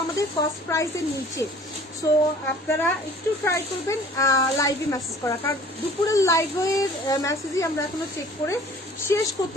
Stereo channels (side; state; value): both; normal; correlation 0.50